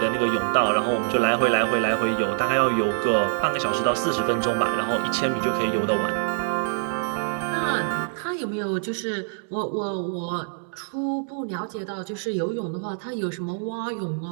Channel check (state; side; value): silent; left; 62 dB below the other